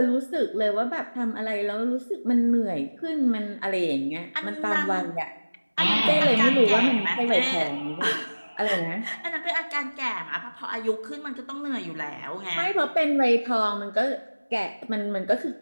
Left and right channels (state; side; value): inverted; both; correlation -1.00